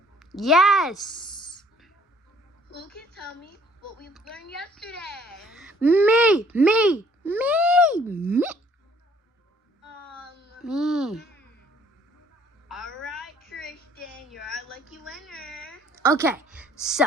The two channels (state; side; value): normal; both; correlation 0.60